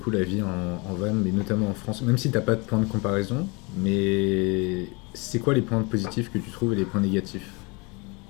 la vie en van, mais notamment en France, même si t'as pas de point de comparaison, mais c'est quoi les points positifs que tu trouves et les points négatifs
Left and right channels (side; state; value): right; quieter; 28.7 dB